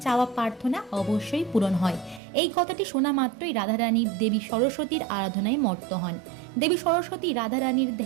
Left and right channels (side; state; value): left; drops out; at 2.2 s